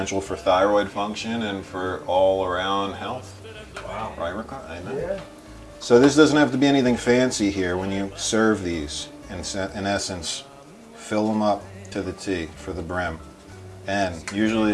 for thyroid function and for all around health. Wow. Right, Ricardo? I know. Yeah. So this doesn't have to be anything fancy here when you serve these. In essence, fill them up to the T for the brim. And usually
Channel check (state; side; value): identical; both; correlation 1.00